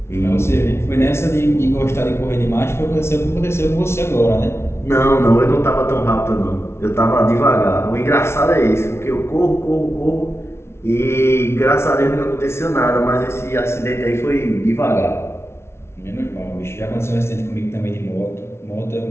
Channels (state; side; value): late; right; 0.12 ms